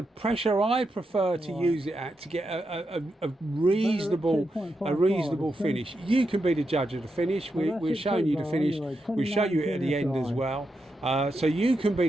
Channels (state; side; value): normal; both; correlation 0.85